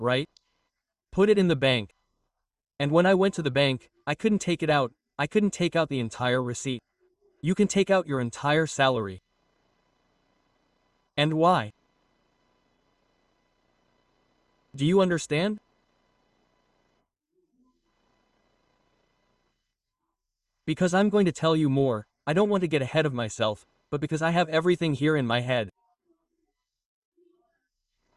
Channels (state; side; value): identical; both; correlation 1.00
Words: Put it in the bank. And when I went to the bank, I couldn't take it out, I couldn't take out the entire receipt. You can take out your entire salary. And why? Do you understand? Because I'm going to tell you more, I don't want to get ahead of myself, but because I have everything here in my head.